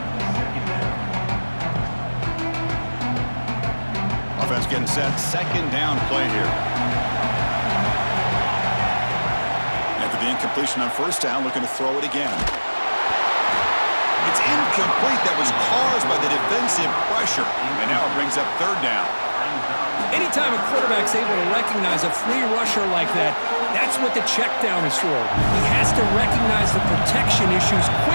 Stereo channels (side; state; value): both; inverted; correlation -1.00